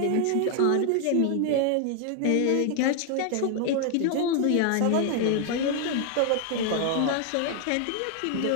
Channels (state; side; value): different; both; correlation 0.00